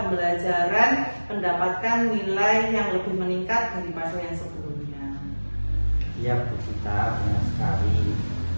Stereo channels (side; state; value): both; inverted; correlation -1.00